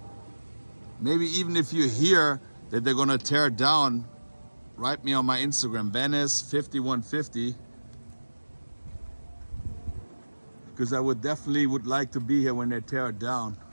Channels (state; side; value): inverted; both; correlation -1.00